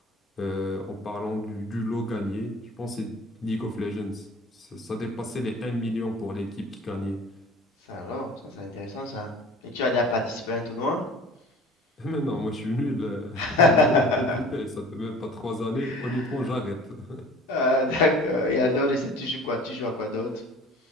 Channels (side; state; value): both; normal; correlation 0.44